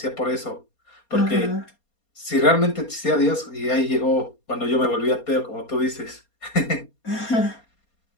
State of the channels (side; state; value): right; late; 4.3 ms